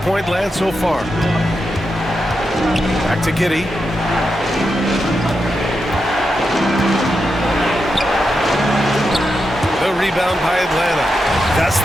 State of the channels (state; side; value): normal; both; correlation 0.87